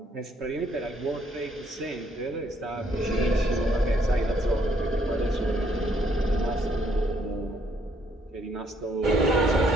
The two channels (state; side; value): normal; both; correlation 0.69